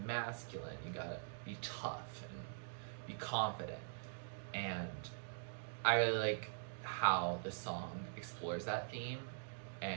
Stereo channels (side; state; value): left; silent; digital silence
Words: masculine, you gotta be tough and be confident. And I really like how the song explores that theme